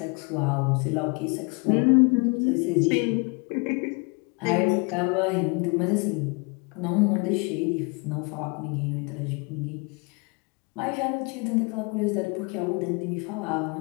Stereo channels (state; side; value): quieter; right; 31.2 dB